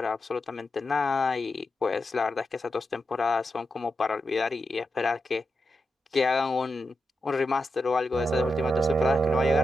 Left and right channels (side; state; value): both; normal; correlation 0.87